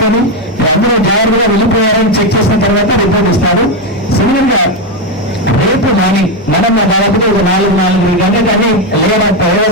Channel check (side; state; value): both; normal; correlation 0.08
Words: అందరూ జాగ్రత్తగా వెళ్ళిపోయారని చెక్ చేసిన తర్వాత రిపోర్ట్ ఇస్తారు. సిమిలర్ గా రేపు మార్నింగ్ మనం దాదాపుగా ఒక 4 గంటలకు అది